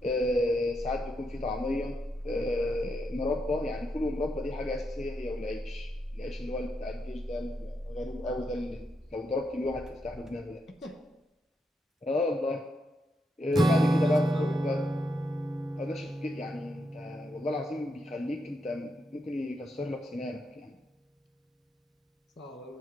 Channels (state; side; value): normal; both; correlation 0.82